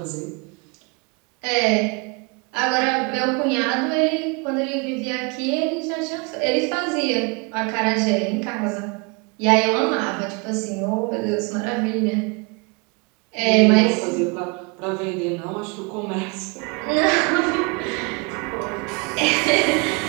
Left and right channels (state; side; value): quieter; left; 31.0 dB